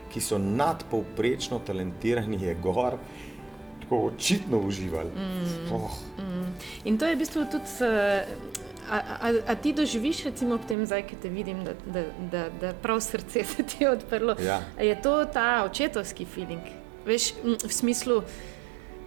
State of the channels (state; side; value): drops out; left; at 10.8 s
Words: ki so nadpovprečno talentirani, je gor tako očitno uživali. In to je v bistvu tudi A ti doživiš recimo ob tem zdaj, ki te vidim, da prav srce se ti je odprlo? Ja. Je to ta očetovski feeling? Veš, v smislu,